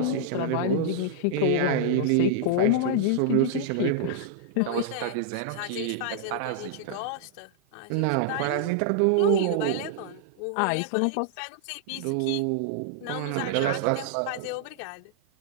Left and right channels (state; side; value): different; both; correlation -0.01